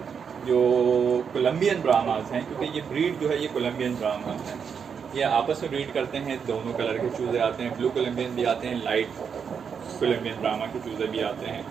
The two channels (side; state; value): left; quieter; 6.7 dB